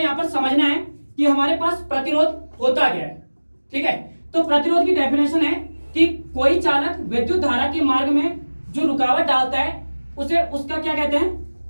यहां पर समझना है कि हमारे पास प्रतिरोध होता क्या है, ठीक है। तो प्रतिरोध की डेफिनेशन है कि कोई चालक विद्युत धारा के मार्ग में जो रुकावट डालता है उसे उसका क्या कहते हैं,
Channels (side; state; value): both; inverted; correlation -1.00